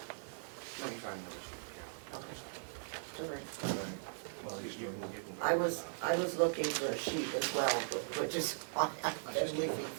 me find the other sheet, Carol. okay, it's all right. Well, You can I was looking for a sheet as well, but just, I've been leafing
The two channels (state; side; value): silent; left; digital silence